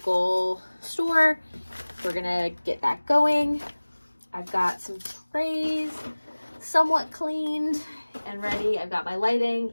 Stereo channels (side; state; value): both; inverted; correlation -1.00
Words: store. We're gonna get that going. I've got some trays somewhat cleaned and ready. I've got my